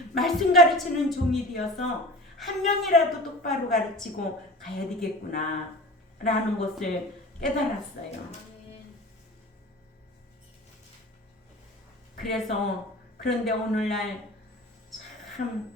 말씀 가르치는 종이 되어서 한 명이라도 똑바로 가르치고 가야 되겠구나 라는 것을 깨달았어요. 그래서 그런데 오늘날 참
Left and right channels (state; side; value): normal; both; correlation 0.37